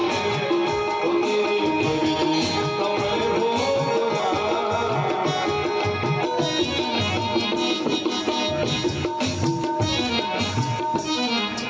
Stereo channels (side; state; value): both; identical; correlation 1.00